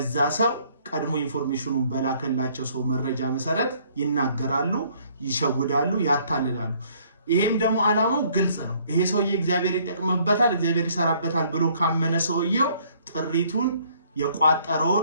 ሰው ቀድሞ ኢንፎርሜሽኑን በላከላቸው ሰው መረጃ መሰረት ይናገራሉ፣ ይሸውዳሉ፣ ያታልላሉ። ይሄም ደግሞ ዓላማው ግልጽ ነው። ይሄ ሰውዬ እግዚአብሔር ይጠቅምበታል፣ እግዚአብሔር ይሰራበታል ብሎ ካመነ ሰውየው ጥሪቱን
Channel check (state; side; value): inverted; both; correlation -0.62